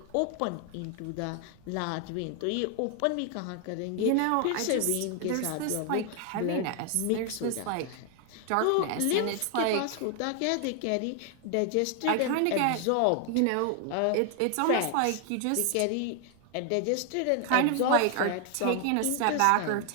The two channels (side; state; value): both; different; correlation 0.00